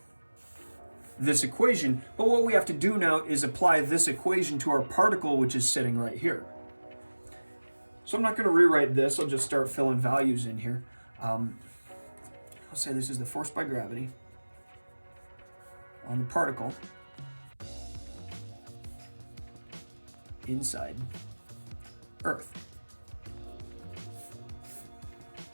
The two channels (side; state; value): both; inverted; correlation -1.00